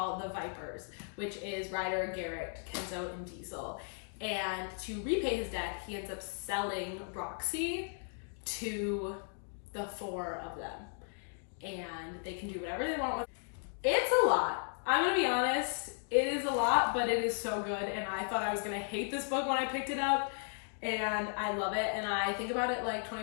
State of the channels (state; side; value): silent; right; 54 dB below the other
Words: the Vipers, which is Ryder, Garrett, Kenzo, and Diesel. And to repay his debt, he ends up selling Roxy to the 4 of them. And they can do whatever they want with it. It's a lot. I'm gonna be honest, it is a lot, but it is so good. And I thought I was gonna hate this book when I picked it up. And I love it, and I think about it like